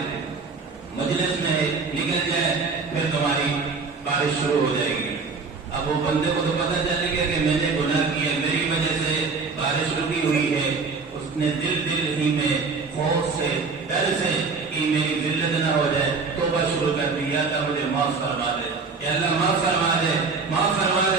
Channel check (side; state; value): left; quieter; 4.6 dB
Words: مجلس میں نکل جائے پھر تمہاری بارش شروع ہو جائے گی۔ اب وہ بندے کو تو پتہ چلے گا کہ میں نے گناہ کیا، میری وجہ سے بارش رکی ہوئی ہے، اس نے دل ہی میں خوف سے ڈر سے کہ میری ذلت نہ ہو جائے توبہ شروع کر دی، یا اللہ مجھے معاف فرما دے، یا اللہ معاف فرما دے، معاف فرما